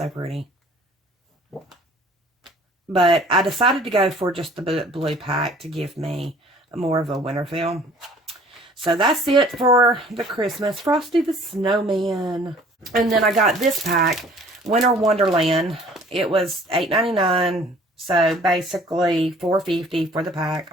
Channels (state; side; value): normal; both; correlation 0.52